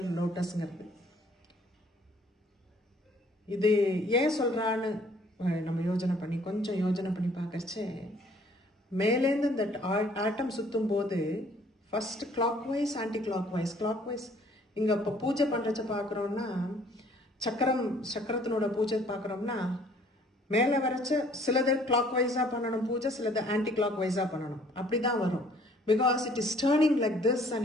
lotusங்கிறது. இது ஏன் சொல்றான்னு நம்ம கொஞ்சம் யோஜனை பண்ணி பார்க்கறச்சே மேலேருந்து இந்த ஆட்டம் சுத்தும் போது first clockwise anticlockwise இங்க இப்போ பூஜை பண்றச்ச பார்க்குறோம்னா சக்கரத்தினோட பூஜை பார்க்குறோம்னா மேலே வரைச்ச சிலது கிளாக் வைஸா பண்ணணும் பூஜை, சிலது ஆன்டி கிளாக் வைஸா பண்ணணும். அப்படிதான் வரும். Because it is turning like this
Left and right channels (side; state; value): both; normal; correlation 0.58